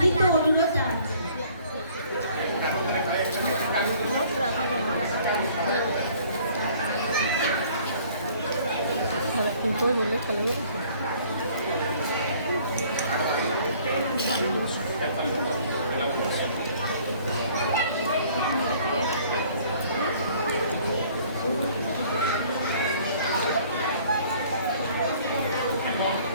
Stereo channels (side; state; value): both; inverted; correlation -0.56